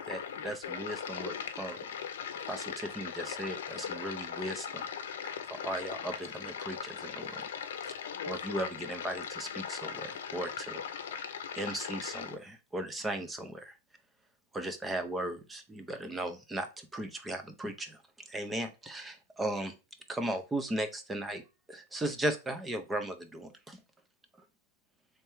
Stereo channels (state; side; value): normal; both; correlation 0.42